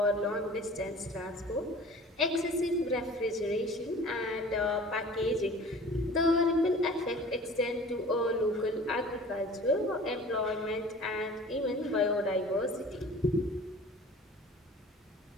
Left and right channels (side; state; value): both; normal; correlation 0.44